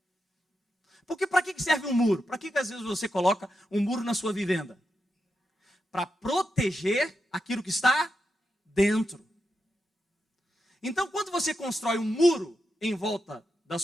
Porque para que serve um muro? Para que às vezes você coloca um muro na sua vivenda? Para proteger aquilo que está dentro. Então, quando você constrói um muro em volta da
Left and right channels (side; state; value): both; normal; correlation 0.87